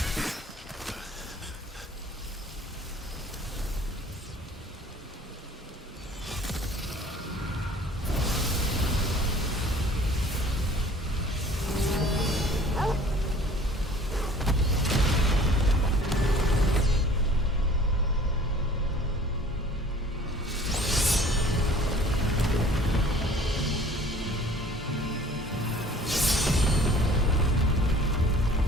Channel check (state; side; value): normal; both; correlation 0.50